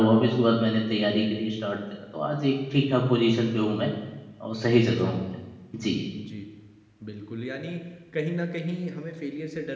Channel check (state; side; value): identical; both; correlation 1.00